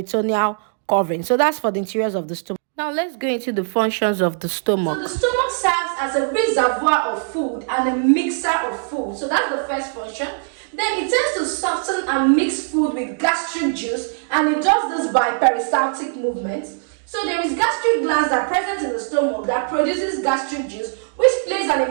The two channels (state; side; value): silent; left; 65 dB below the other